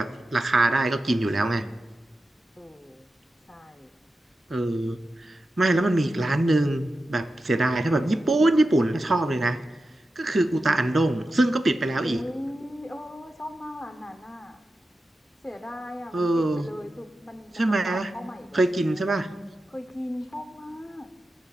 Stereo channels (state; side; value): normal; both; correlation 0.92